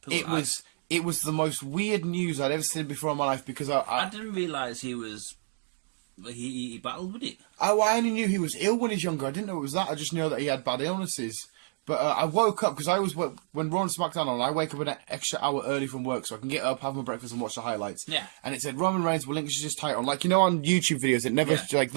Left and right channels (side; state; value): left; silent; digital silence